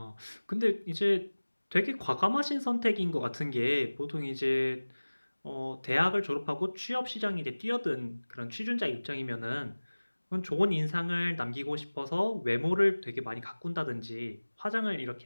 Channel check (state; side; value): inverted; both; correlation -1.00